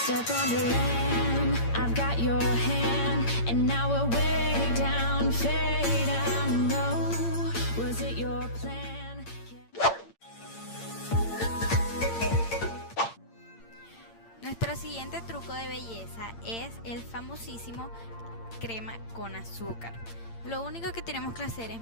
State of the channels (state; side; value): late; right; 8.8 ms